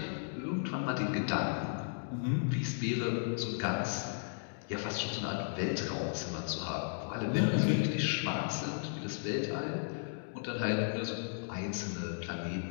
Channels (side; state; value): right; silent; digital silence